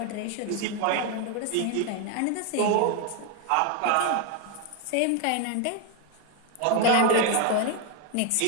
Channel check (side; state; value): both; different; correlation 0.01